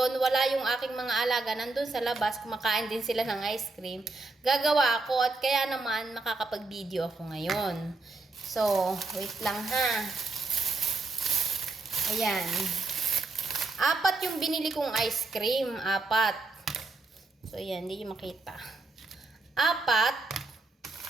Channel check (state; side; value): quieter; left; 3.4 dB